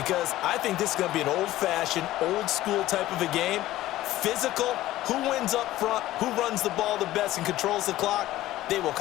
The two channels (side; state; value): right; quieter; 15.4 dB